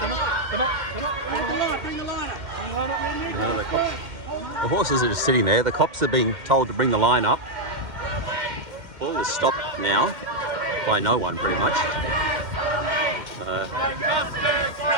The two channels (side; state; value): left; late; 2.1 ms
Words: Come on. Bring the line up. The horses are just sitting there. The cops are being told to bring the line up. All is stopped now by no one, pretty much. I